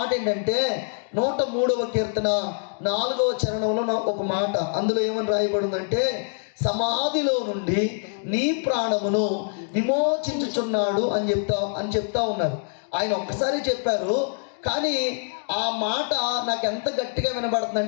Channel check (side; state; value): right; silent; digital silence